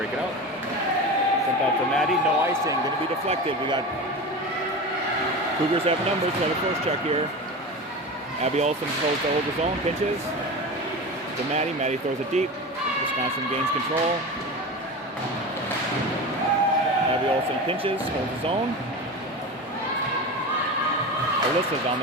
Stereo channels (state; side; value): normal; both; correlation 0.27